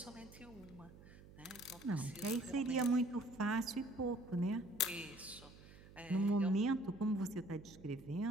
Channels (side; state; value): right; noise; hum, 19 dB below the sound